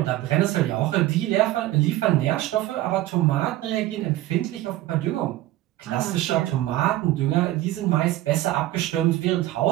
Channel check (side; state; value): left; quieter; 15.5 dB